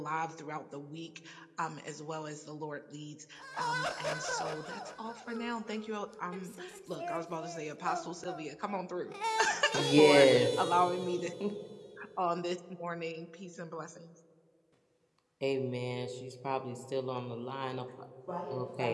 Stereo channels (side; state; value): both; identical; correlation 1.00